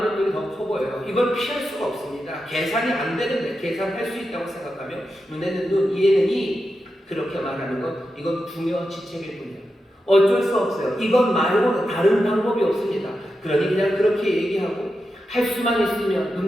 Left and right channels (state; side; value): normal; both; correlation 0.89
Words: 떡이 더 커 보여요. 이걸 피할 수가 없습니다. 계산이 안 되는데 계산할 수 있다고 생각하면 눈에는 눈, 이에는 이 그렇게 말하는 것, 이건 부녀지책일 뿐이에요. 어쩔 수 없어요. 이것 말고는 다른 방법이 없습니다. 그러니 그냥 그렇게 얘기하고 할 수만 있으면